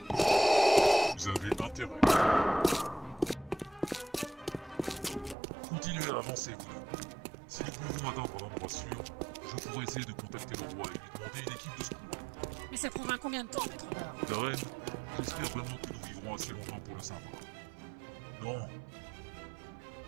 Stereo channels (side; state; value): left; drops out; at 5.4 s